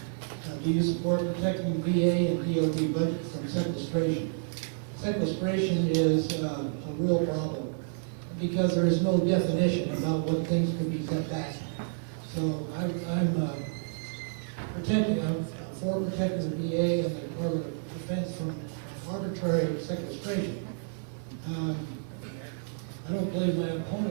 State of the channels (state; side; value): silent; left; 58 dB below the other